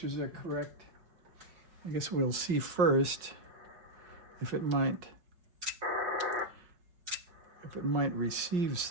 are correct. I guess we'll see first if it might receive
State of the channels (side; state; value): left; late; 5.4 ms